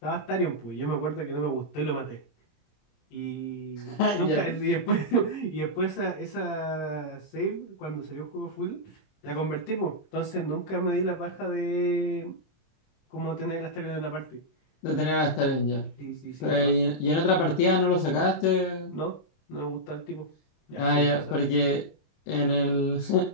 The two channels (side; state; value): right; late; 26 ms